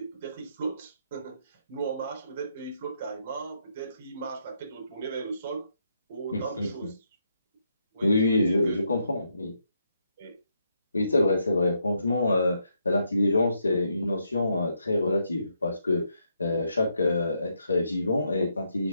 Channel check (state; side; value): inverted; both; correlation -0.78